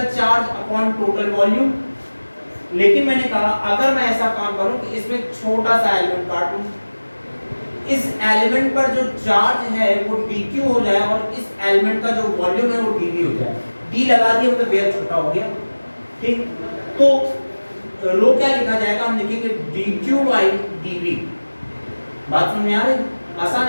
charge upon total volume. लेकिन मैंने कहा अगर मैं ऐसा काम करूं कि इसमें छोटा सा एलिमेंट काटूं, इस एलिमेंट पर जो चार्ज है वो dq हो जाए और इस एलिमेंट का जो वॉल्यूम है वो dv हो जाए। d लगा दिया मतलब बेहद छोटा हो गया, ठीक? तो रो क्या लिखा जाएगा? हम लिखेंगे dq by dv। बात समझ में आ रही? आसान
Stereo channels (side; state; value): both; inverted; correlation -1.00